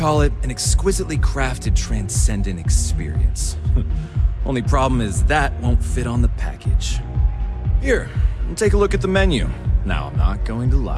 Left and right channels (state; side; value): identical; both; correlation 1.00